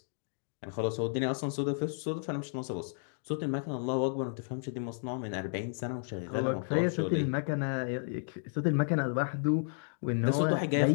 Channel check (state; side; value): silent; right; digital silence